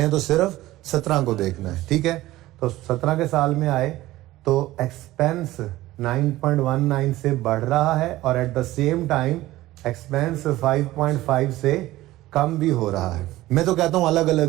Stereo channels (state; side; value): quieter; left; 16.7 dB